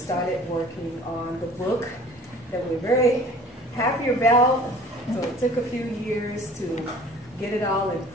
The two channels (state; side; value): normal; both; correlation 0.48